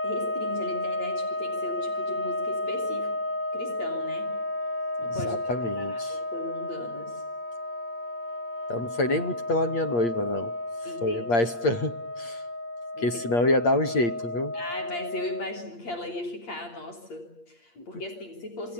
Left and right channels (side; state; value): right; late; 8.6 ms